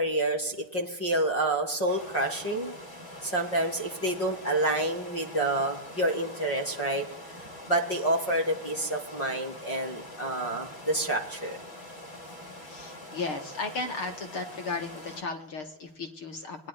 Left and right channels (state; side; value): late; right; 5.5 ms